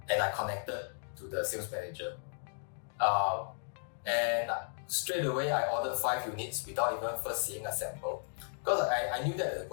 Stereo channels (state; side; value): silent; right; digital silence